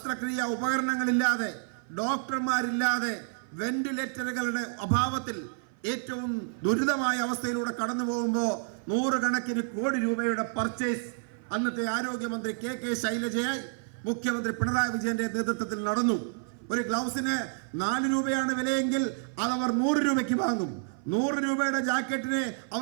ഉപകരണങ്ങളില്ലാതെ ഡോക്ടർമാരില്ലാതെ വെന്റിലേറ്ററുകളുടെ അഭാവത്തിൽ ഏറ്റവും ദുരിതമായ അവസ്ഥയിലൂടെ കടന്നു പോകുമ്പോൾ നൂറുകണക്കിന് കോടി രൂപയുടെ പർച്ചേസ് അന്നത്തെ ആരോഗ്യമന്ത്രി കെ ശൈലജയായി മുഖ്യമന്ത്രി പിണറായി വിജയന്റെ നേതൃത്വത്തിൽ നടന്നു. ഒരു ഗ്ലൗസിന് 4 രൂപയാണ് വിലയെങ്കിൽ അതവർ 100 രൂപയ്ക്ക് വാങ്ങും. 100 രൂപയുടെ ജാക്കറ്റിനെ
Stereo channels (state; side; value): silent; left; 56 dB below the other